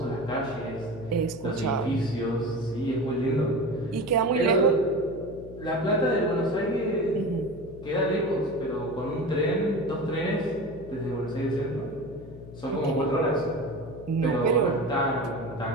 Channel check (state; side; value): noise; left; hum, 15 dB below the sound